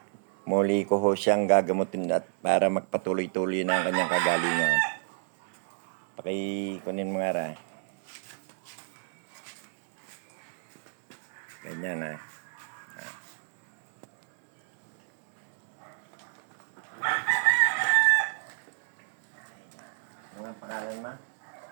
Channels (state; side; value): silent; left; digital silence